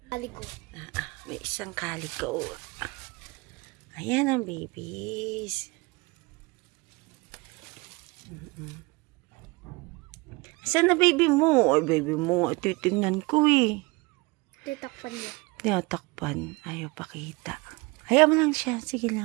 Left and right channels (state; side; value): quieter; left; 25.7 dB